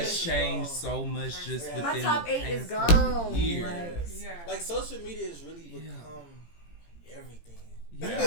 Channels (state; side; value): late; right; 17 ms